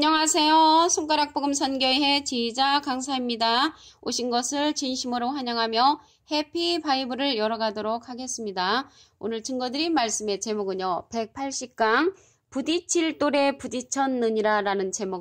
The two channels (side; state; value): both; identical; correlation 1.00